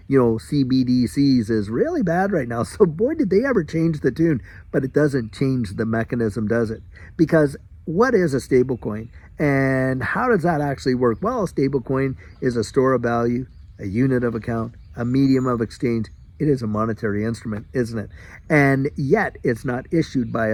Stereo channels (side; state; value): both; identical; correlation 1.00